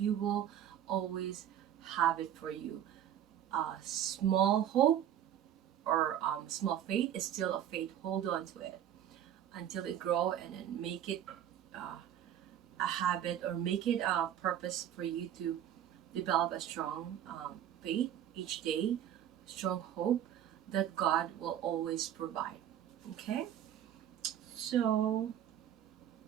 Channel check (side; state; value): left; quieter; 10.5 dB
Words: will always have it for you. Small hope or small faith is still a faith. Hold on to it until it grow, and then make it a habit, or make it a purpose for you to develop a strong faith each day, strong hope that God will always provide. Okay, so